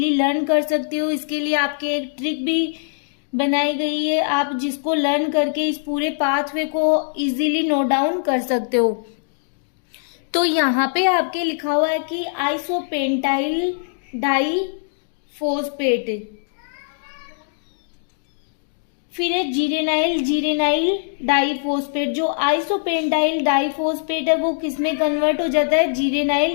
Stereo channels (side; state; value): right; silent; digital silence